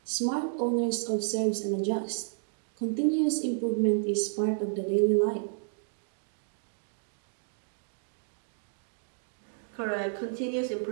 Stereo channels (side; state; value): left; silent; digital silence